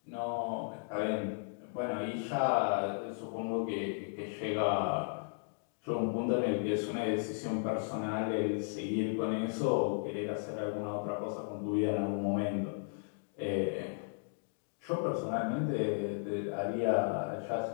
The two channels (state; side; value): silent; right; digital silence